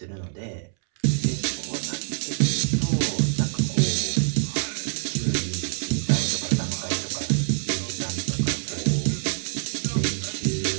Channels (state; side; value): silent; left; 61 dB below the other